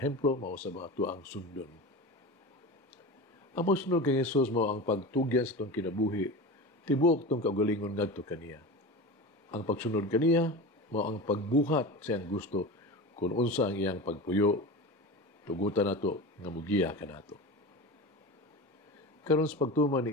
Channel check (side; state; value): both; normal; correlation 0.28